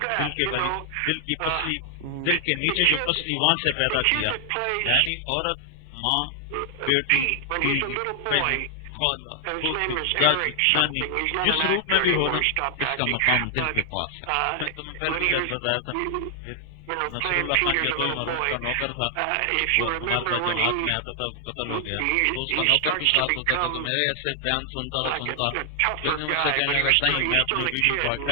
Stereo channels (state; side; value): different; both; correlation 0.00